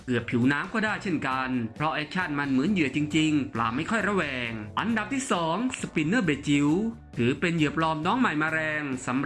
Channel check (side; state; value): both; identical; correlation 1.00